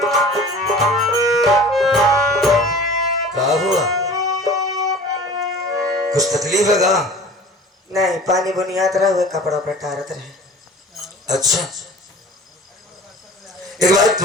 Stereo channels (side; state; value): both; normal; correlation 0.43